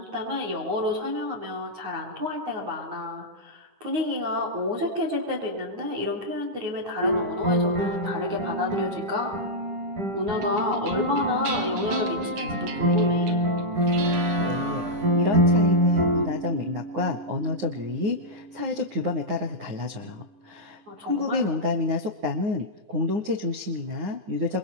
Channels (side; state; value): left; late; 9.5 ms